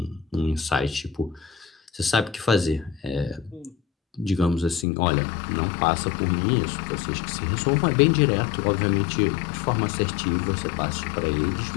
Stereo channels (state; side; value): drops out; right; at 4.9 s